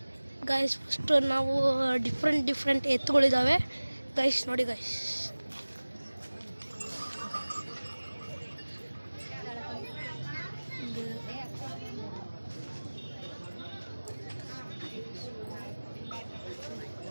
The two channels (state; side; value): inverted; both; correlation -1.00